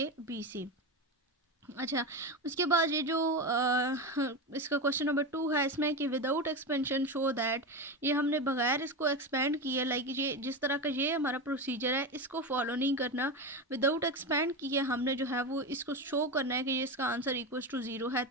अच्छा, उसके बाद ये जो इसका क्वेश्चन नंबर 2 है इसमें कि विदाउट एक्सपेंशन शो दैट, ये हमने बगैर इसको एक्सपेंड किए, लाइक ये जिस तरह का ये हमारा प्रोसीजर है इसको फॉलो नहीं करना, विदाउट एक्सपेंड किए हमने जो है वो इसको शो करना है कि ये इसका आंसर इक्वल्स टू 0 है।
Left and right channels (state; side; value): normal; both; correlation 0.18